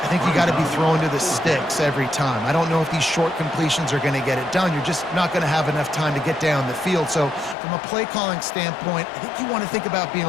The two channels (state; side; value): drops out; right; at 7.6 s